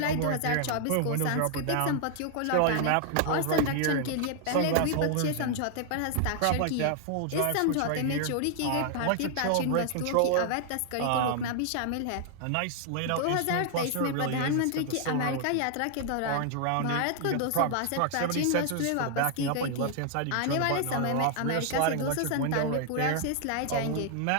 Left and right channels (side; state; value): both; different; correlation 0.00